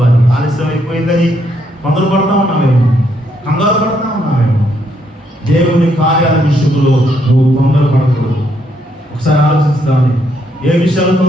ఆలస్యం అయిపోయిందని తొందరపడతా ఉన్నామేమో, కంగారు పడతా ఉన్నామేమో. దేవుని కార్యాల విషయంలో నువ్వు తొందరపడకూడదు. ఒకసారి ఆలోచిస్తామని, ఏ విషయాలు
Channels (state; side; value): normal; both; correlation 0.74